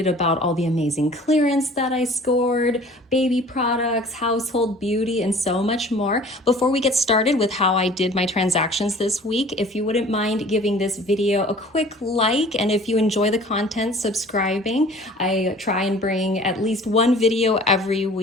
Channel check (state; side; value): normal; both; correlation 0.48